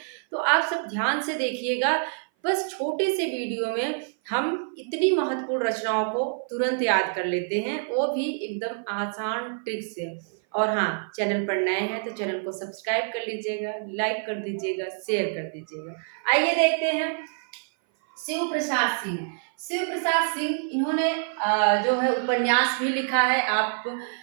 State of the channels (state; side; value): silent; left; 57 dB below the other